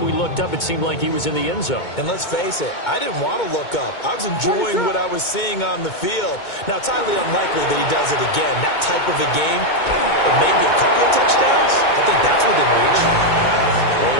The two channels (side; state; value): right; late; 2.2 ms